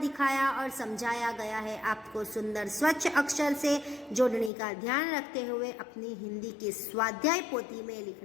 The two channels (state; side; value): drops out; right; at 4.5 s